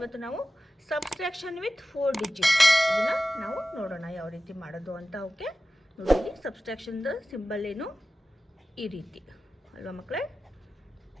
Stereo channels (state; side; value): normal; both; correlation 0.94